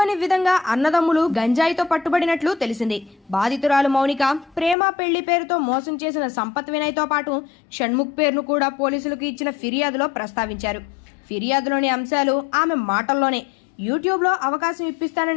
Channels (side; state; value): right; drops out; at 4.8 s